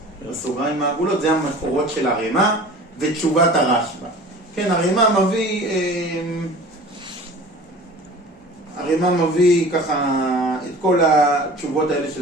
בסוגריים העגולות, זה המקורות של הרמה ותשובת הרשב"א. כן, הרמה מביא ככה את כל התשובות האלה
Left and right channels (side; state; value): both; normal; correlation 0.41